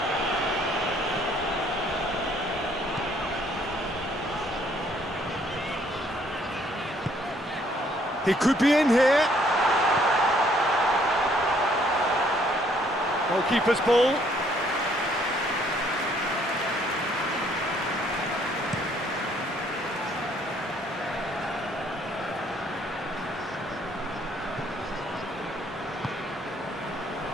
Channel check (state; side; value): normal; both; correlation 0.65